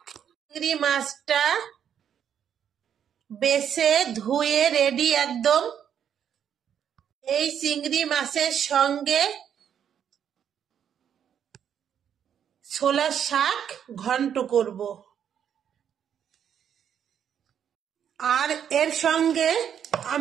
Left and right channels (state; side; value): quieter; left; 8.8 dB